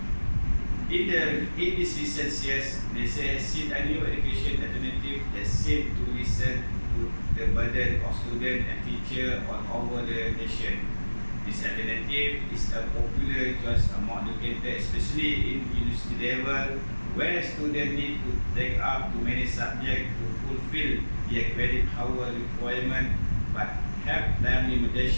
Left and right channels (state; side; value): inverted; both; correlation -1.00